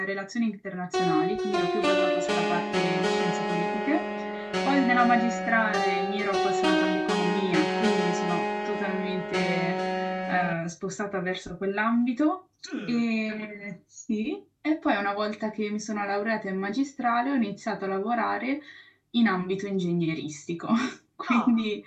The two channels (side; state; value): both; identical; correlation 1.00